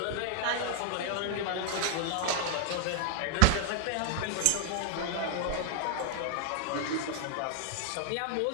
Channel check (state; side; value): different; both; correlation 0.00